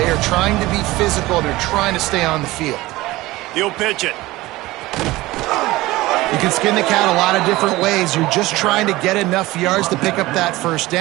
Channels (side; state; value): left; quieter; 18.9 dB